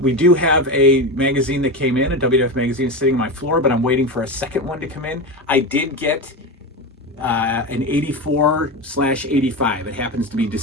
We do have a magazine that came in, a WWF magazine sitting on my floor, but I'm waiting for a second one to come in. I did get an 84/85. It happens to be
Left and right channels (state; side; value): normal; both; correlation 0.20